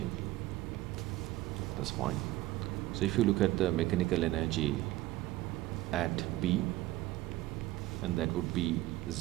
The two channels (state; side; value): quieter; left; 16.8 dB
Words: that's fine. So if you look at the mechanical energy at B, and that would be